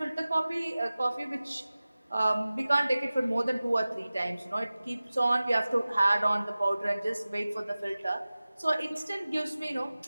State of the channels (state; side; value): inverted; both; correlation -0.97